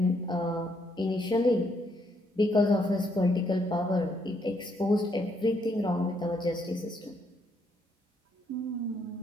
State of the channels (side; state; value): both; normal; correlation 0.73